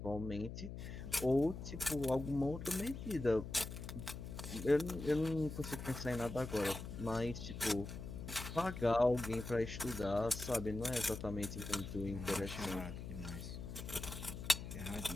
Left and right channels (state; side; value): noise; left; hum, 8 dB below the sound